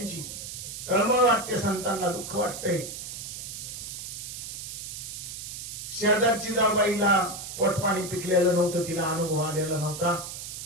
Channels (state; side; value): noise; right; hiss, 8 dB below the sound